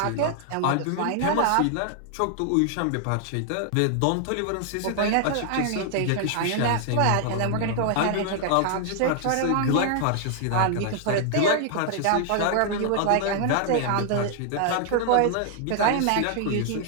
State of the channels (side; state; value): both; different; correlation 0.00